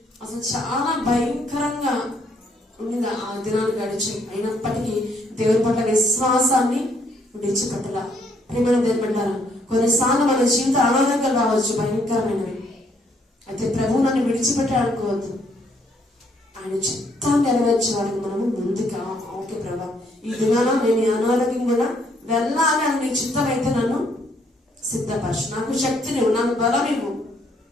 అసలు చాలా భయంకరంగా ఉండింది ఆ దినాలు గడిచి. అయినప్పటికీ దేవుడి పట్ల విశ్వాసాన్ని విడిచిపెట్టలా. ప్రేమ దేవుడు పెట్టారా, కొన్నిసార్లు మన జీవిత అనారోగ్యాలు రావచ్చు, భయంకరమైనవి. అయితే ప్రభువు నన్ను విడిచిపెట్టాలనుకోవద్దు. ఆయన చిత్తాన్ని నెరవేర్చే వారికి మనము ముందుగా ఓకే ప్రభా ఈ దినాన నేను ఈ అనారోగ్యం కూడా వెళ్ళాలి అని నీ చిత్తం అయితే నన్ను సిద్ధపరచు, నాకు శక్తిని నాకు బలం ఇవ్వు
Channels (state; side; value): normal; both; correlation 0.69